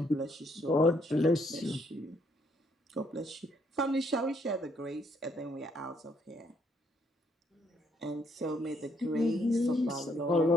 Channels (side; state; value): both; normal; correlation 0.70